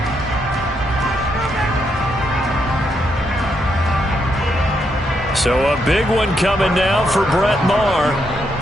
So a big one coming now for Brett Maher.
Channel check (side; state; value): both; normal; correlation 0.78